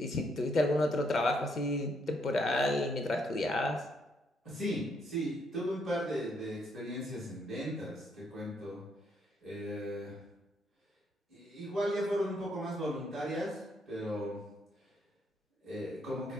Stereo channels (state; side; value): normal; both; correlation 0.73